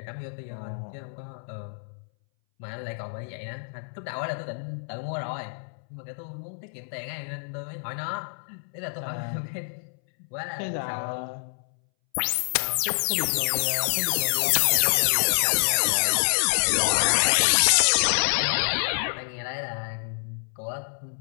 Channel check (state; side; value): silent; right; 60 dB below the other